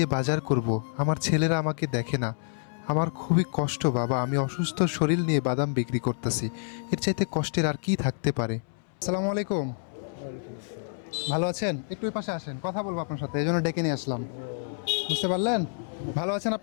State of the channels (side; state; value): right; silent; 59 dB below the other